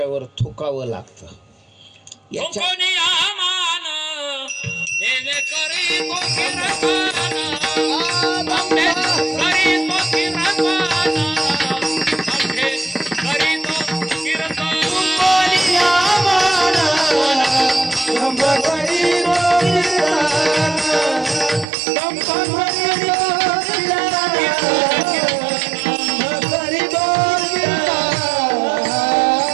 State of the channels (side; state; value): left; drops out; at 21.7 s